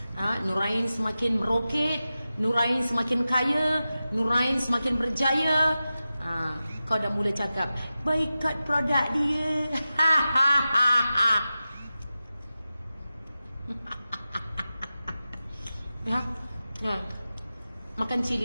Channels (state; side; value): inverted; both; correlation -0.94